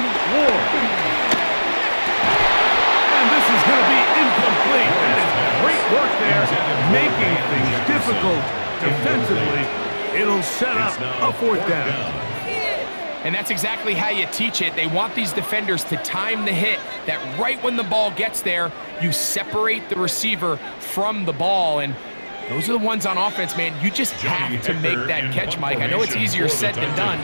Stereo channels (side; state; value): both; inverted; correlation -1.00